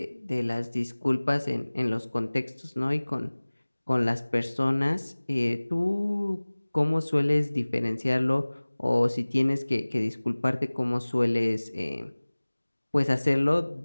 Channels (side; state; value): both; inverted; correlation -1.00